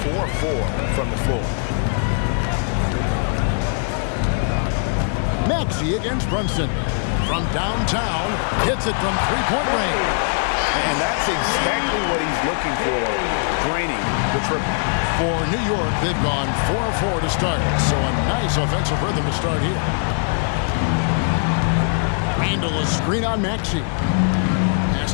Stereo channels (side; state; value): right; silent; 62 dB below the other